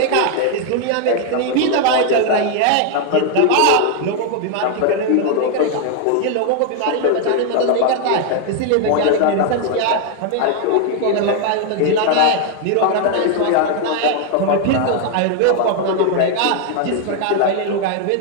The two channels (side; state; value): both; different; correlation 0.00